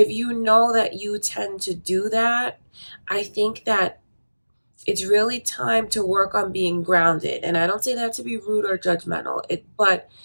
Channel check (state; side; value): inverted; both; correlation -1.00